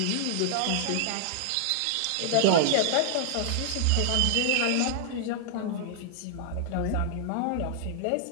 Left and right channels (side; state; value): both; different; correlation -0.01